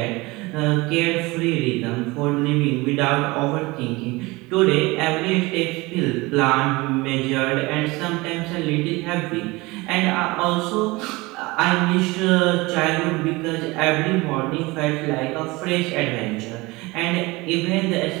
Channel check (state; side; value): quieter; left; 22.8 dB